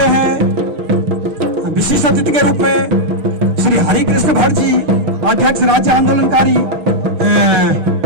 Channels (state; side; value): late; left; 6.6 ms